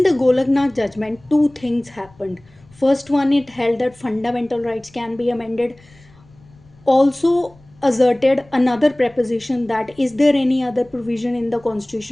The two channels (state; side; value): noise; left; rumble, 28 dB below the sound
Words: the Golaknath judgment, two things happened. First one, it held that fundamental rights can be amended. Also asserted another preposition, that is there any other provision in the